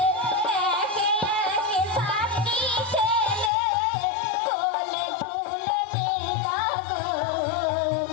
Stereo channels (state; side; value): drops out; right; at 3.5 s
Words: একে একে সাতটি ছেলে কোলে তুলে নিল গো,